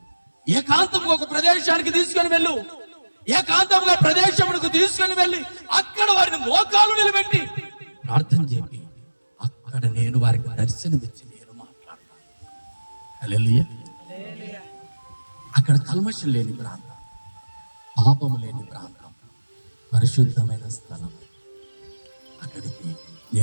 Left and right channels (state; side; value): inverted; both; correlation -1.00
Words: ఏకాంతంగా ఒక ప్రదేశానికి తీసుకొని వెళ్ళు. ఏకాంతంగా ప్రదేశమునకు తీసుకొని వెళ్ళి అక్కడ వారిని మోకాలు నిలబెట్టి ప్రార్థన చేపి అక్కడ నేను వారికి దర్శనమిచ్చి నేను మాట్లాడతాను. హల్లెలూయా. అక్కడ కల్మషం లేని ప్రాంతం, పాపము లేని ప్రాంతం, పరిశుద్ధమైన స్థలం. అక్కడికి